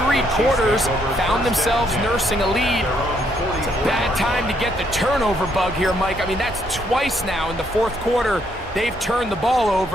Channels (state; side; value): normal; both; correlation 0.72